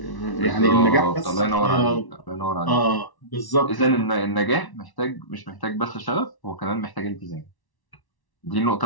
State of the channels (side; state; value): right; late; 1.1 ms